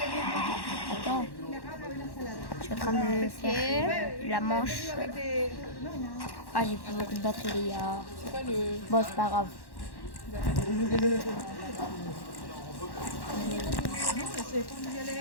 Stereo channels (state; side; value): late; right; 1.1 ms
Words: Attends. Je suis en train de faire la manche. Ah, j'ai plus beaucoup de batterie, les gars. c'est pas le. Bon, c'est pas grave.